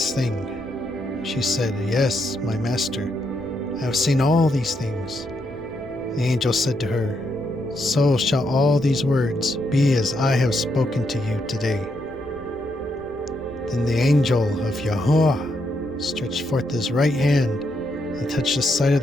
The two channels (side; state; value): right; noise; rumble, 21 dB below the sound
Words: thing?" She said, "Yes, my master, I have seen all these things." The angel said to her, "So shall all these words be as I have spoken to you today." Then the angel of Yahweh stretched forth his right hand and touched the side of